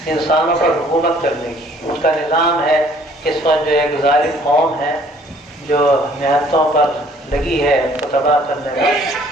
انسانوں پر حکومت کرنے کی. اس کا نظام ہے اس وقت جو ایک ظالم قوم ہے جو نہتوں پر لگی ہے اس کو تباہ کرنے کا.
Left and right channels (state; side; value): normal; both; correlation 0.58